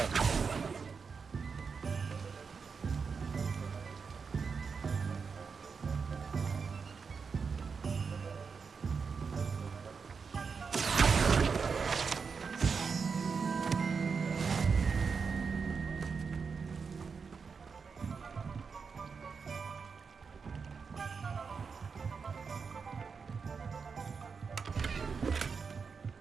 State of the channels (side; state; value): left; quieter; 5.5 dB